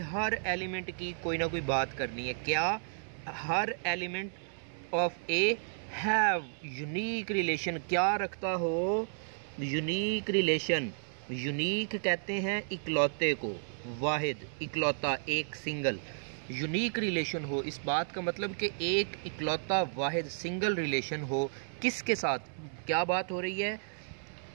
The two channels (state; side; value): silent; left; 56 dB below the other